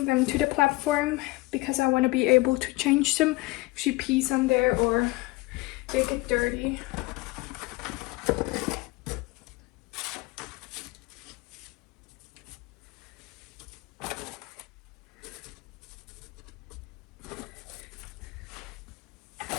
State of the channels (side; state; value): right; quieter; 21.8 dB